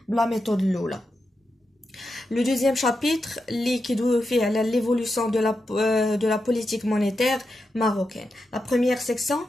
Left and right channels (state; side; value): normal; both; correlation 0.88